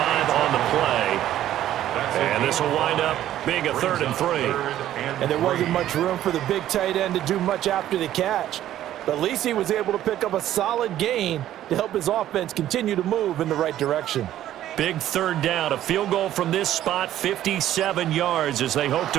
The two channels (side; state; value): left; quieter; 12.5 dB